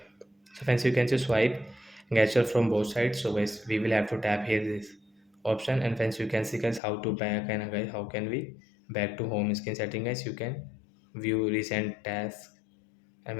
So friends, you can just swipe gesture from both sides. So guys, we will have to tap here this option, and friends, you can see guys how to back, and guys how can we back to home screen setting guys. You can view recent tasks, and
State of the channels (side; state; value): right; drops out; at 6.8 s